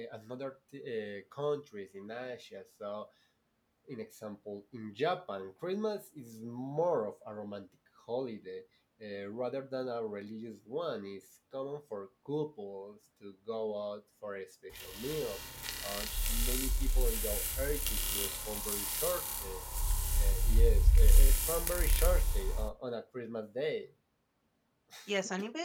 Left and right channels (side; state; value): both; identical; correlation 1.00